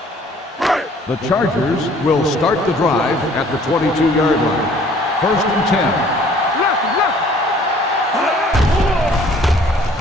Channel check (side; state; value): both; normal; correlation 0.56